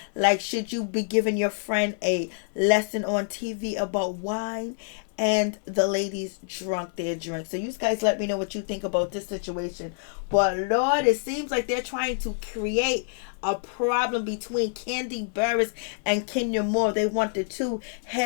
Like, should you be giving your friend a lesson on TV about wine? And the ladies drunk their drink. So you guys let me know what you think about this situation. But Lord, it seems like they're trying to create a problem between Kandi Burruss and Kenya Moore. They want the two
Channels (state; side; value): silent; right; digital silence